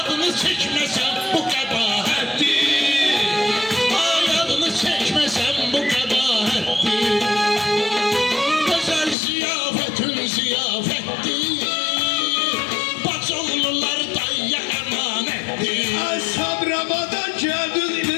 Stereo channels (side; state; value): right; drops out; at 9.2 s